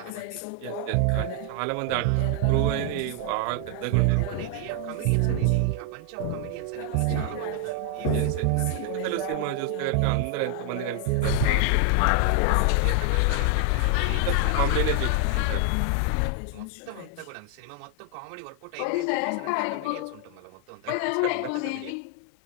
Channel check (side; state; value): both; different; correlation 0.00